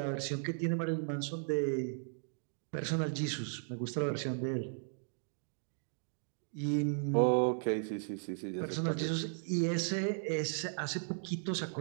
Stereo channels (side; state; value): left; silent; digital silence